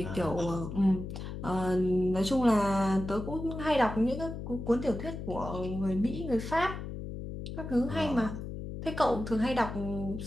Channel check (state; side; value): noise; left; hum, 7 dB below the sound